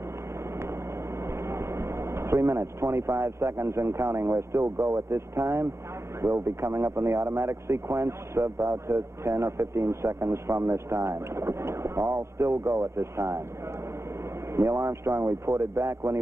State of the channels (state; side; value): late; left; 0.13 ms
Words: 3 minutes, 25 seconds and counting. We're still go at this time. We'll be coming up in the automatic sequence about 10 or 15 seconds from this time. All still go at this time. Neil Armstrong reported back when he